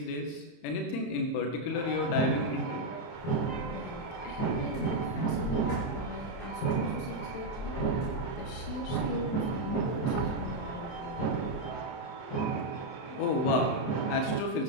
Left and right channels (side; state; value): right; late; 31 ms